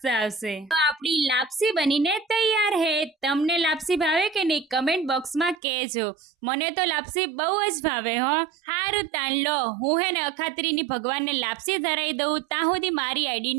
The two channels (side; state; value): left; drops out; at 5.6 s